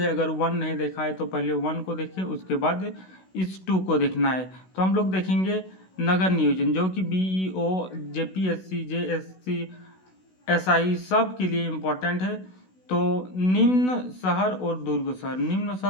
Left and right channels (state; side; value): late; right; 16 ms